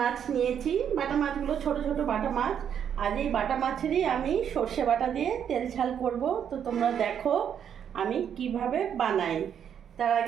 নিয়েছি। বাটা মাছগুলো ছোট ছোট বাটা মাছ। আজ এই বাটা মাছেরই আমি সর্ষে বাটা দিয়ে তেল ঝাল করব। তো তোমরা দেখো আমি কিভাবে বানাই। তার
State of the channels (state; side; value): quieter; left; 8.6 dB